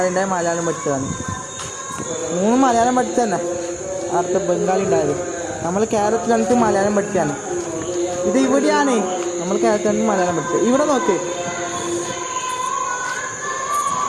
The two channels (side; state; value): both; identical; correlation 1.00